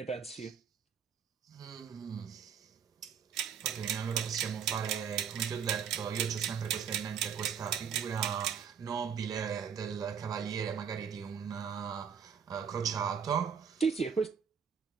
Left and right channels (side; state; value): left; quieter; 7.4 dB